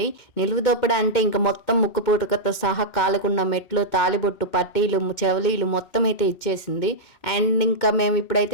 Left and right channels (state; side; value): late; right; 2.2 ms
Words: నిలువుదోపిడి అంటే ఇంక మొత్తం ముక్కు పుడకతో సహా కాలుకున్న మెట్లు, తాళిబొట్టు, పట్టీలు, చెవలీలు మొత్తం అయితే ఇచ్చేసింది. అండ్ ఇంకా మేము